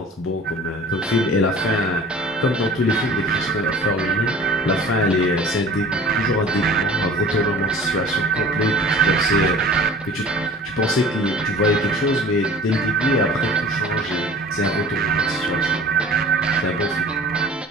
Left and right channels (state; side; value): normal; both; correlation 0.44